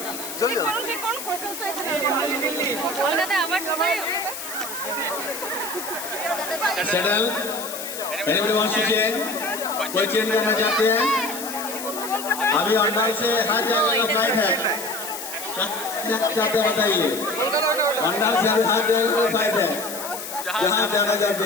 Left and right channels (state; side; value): noise; left; hiss, 9 dB below the sound